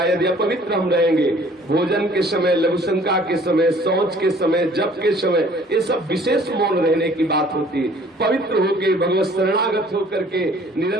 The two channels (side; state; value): both; normal; correlation 0.54